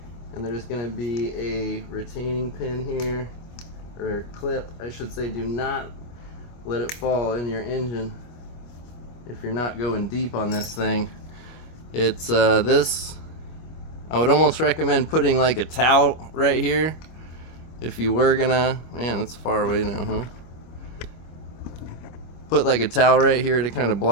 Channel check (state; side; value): late; right; 25 ms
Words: and there's going to be a retaining pin here. Or clip, I should say. Do not let it fall in your engine if you're not going deep on this thing. It's this. I would almost recommend putting like a towel right here if you were gonna... Man, that's far away now, huh? Put like a towel right here to kind of